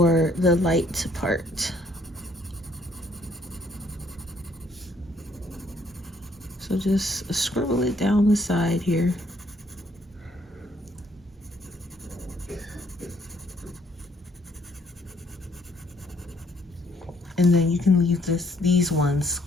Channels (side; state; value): both; normal; correlation 0.66